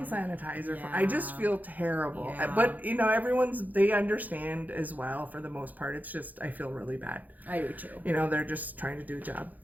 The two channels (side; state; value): left; late; 0.081 ms